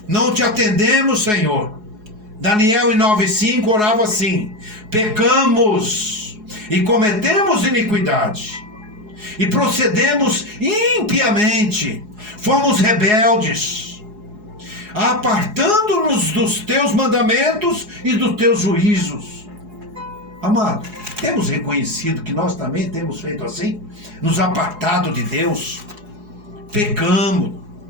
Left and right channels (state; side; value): late; left; 4.7 ms